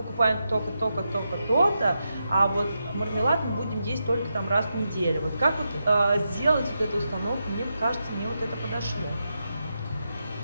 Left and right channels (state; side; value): inverted; both; correlation -0.86